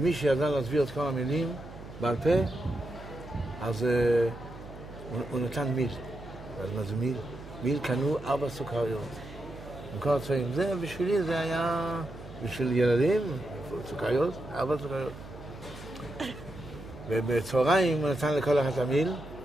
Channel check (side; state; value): right; noise; hum, 15 dB below the sound